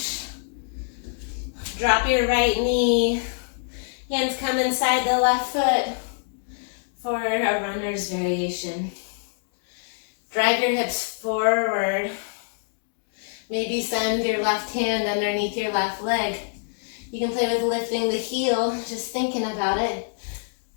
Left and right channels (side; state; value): right; silent; digital silence